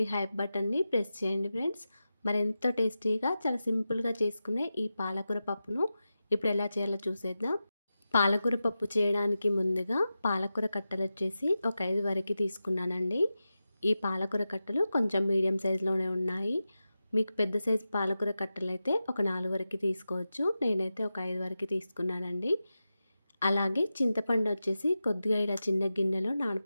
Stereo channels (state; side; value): inverted; both; correlation -0.92